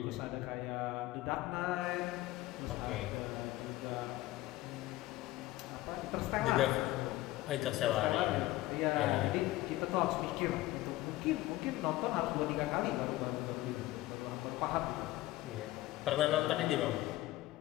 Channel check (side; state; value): right; quieter; 17.0 dB